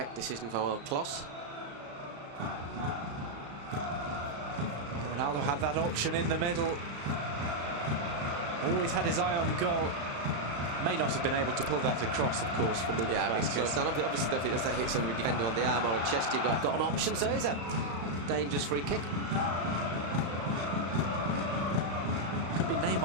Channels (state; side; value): late; left; 35 ms